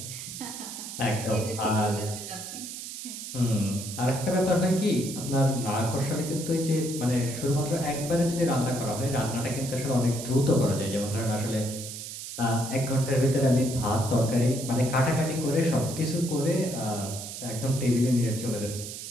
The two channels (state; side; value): noise; right; hiss, 9 dB below the sound